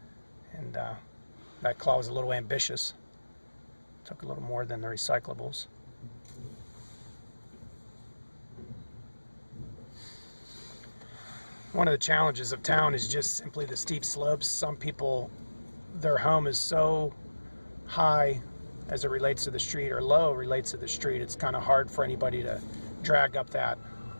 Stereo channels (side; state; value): both; inverted; correlation -1.00